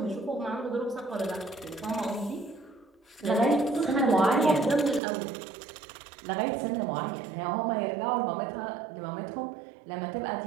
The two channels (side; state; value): left; drops out; at 5.0 s